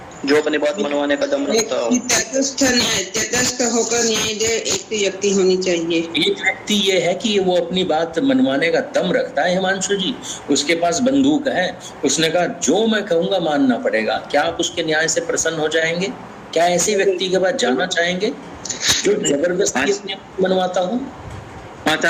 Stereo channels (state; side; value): identical; both; correlation 1.00